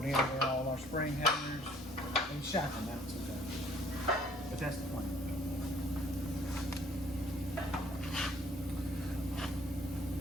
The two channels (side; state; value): both; normal; correlation 0.59